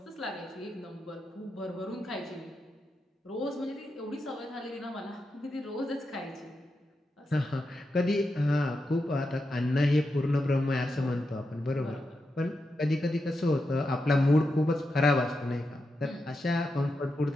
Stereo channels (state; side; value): normal; both; correlation 0.87